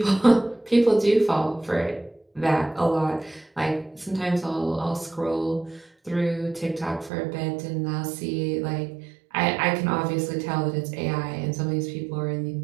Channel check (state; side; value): drops out; left; at 7.1 s